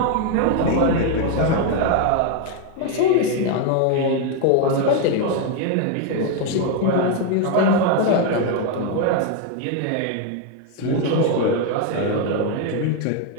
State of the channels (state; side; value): different; both; correlation 0.01